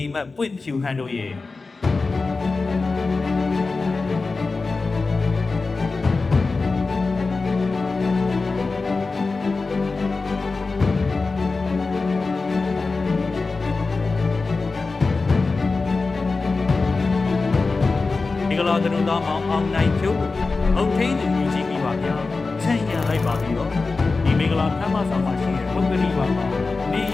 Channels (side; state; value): right; quieter; 3.9 dB